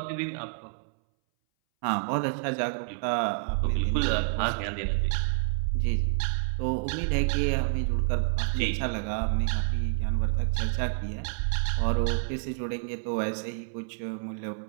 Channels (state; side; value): silent; left; 59 dB below the other